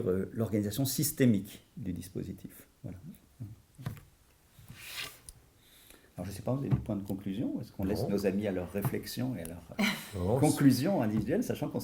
l'organisation systémique du dispositif. Voilà. Alors, je ne sais pas, vous avez des points de conclusion? Est-ce qu'on laisse nos amis à leurs réflexions et à leurs conclusions individuelles, sachant qu'on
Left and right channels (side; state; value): both; identical; correlation 1.00